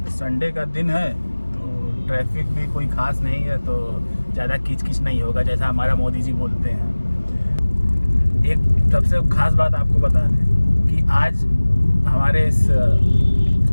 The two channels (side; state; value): both; inverted; correlation -1.00